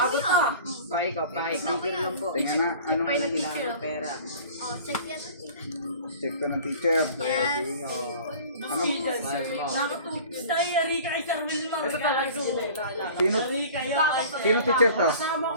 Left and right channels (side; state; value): both; inverted; correlation -0.44